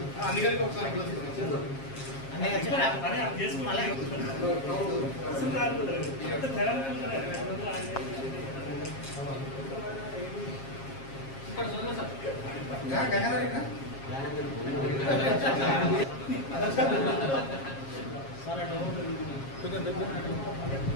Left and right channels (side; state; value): right; late; 7.4 ms